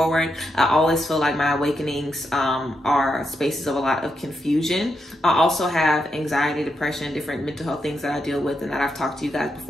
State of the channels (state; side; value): normal; both; correlation 0.83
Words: I always feel like my awakenings are spaces of a lot of confusion. I also have anxiety, depression, different mental health things that I deal with and that I've talked to you guys